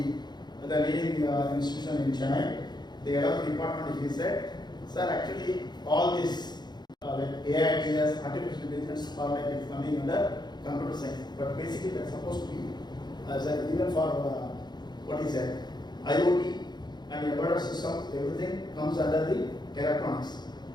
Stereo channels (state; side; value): late; right; 0.21 ms